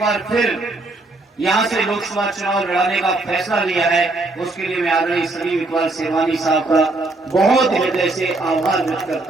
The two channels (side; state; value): left; quieter; 3.0 dB